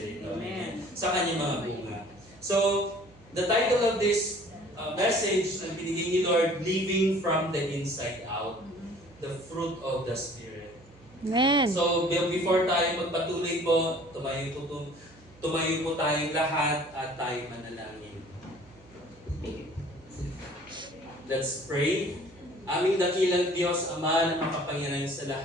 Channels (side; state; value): right; noise; hum, 26 dB below the sound